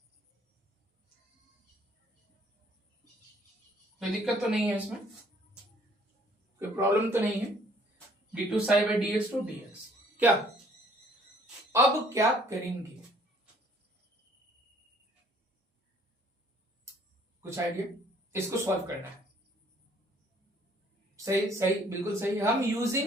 कोई दिक्कत तो नहीं है इसमें, कोई प्रॉब्लम तो नहीं है। d2 psi by dx2 dx। क्या अब क्या करेंगे, कुछ आइडिया? इसको सॉल्व करना है। सही सही, बिल्कुल सही। हम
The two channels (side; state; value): both; normal; correlation 0.60